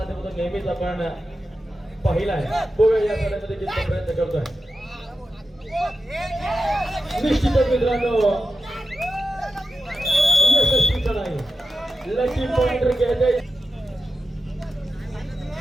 नेहमीच आपण पाहिला आहे. बघूया या चढाईमध्ये किती प्रयत्न करतोय. निश्चितच मित्रांनो यशस्वी चढाई लकी पॉइंट घ्यायचे.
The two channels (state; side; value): normal; both; correlation 0.91